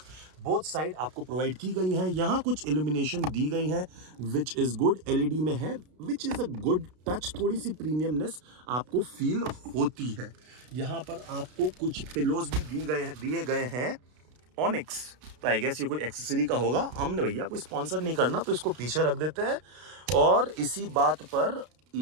बोथ साइड आपको प्रोवाइड की गई हैं। यहाँ कुछ इल्यूमिनेशन दी गई है विच इज गुड, एलईडी में है, विच इज अ गुड टच, थोड़ी सी प्रीमियमनेस आपको फील होती है। यहाँ पर आपको कुछ पिलोज भी दिए गए हैं ऑनिक्स, तो आई गेस ये कोई एक्सेसरी का होगा। हमने भैया कोई स्पॉन्सर नहीं करना तो इसको पीछे रख देते हैं। और इसी बात पर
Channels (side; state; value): left; late; 33 ms